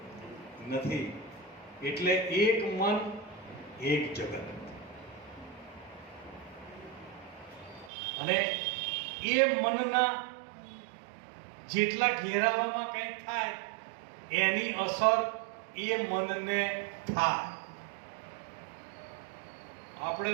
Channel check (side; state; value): left; drops out; at 7.9 s